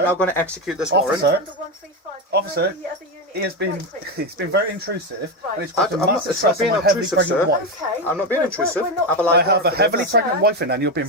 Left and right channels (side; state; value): both; normal; correlation 0.12